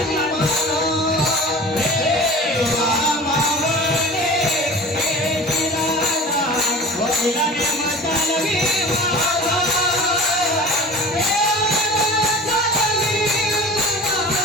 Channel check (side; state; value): both; normal; correlation 0.38